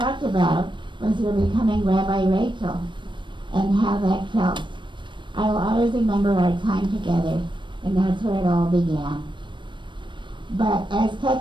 about was your becoming Rabbi Rachel and how that felt. I will always remember our time together, and that's where it all began. But as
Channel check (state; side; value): late; left; 0.23 ms